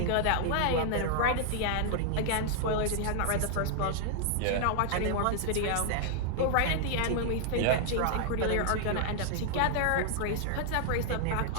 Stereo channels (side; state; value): both; different; correlation 0.00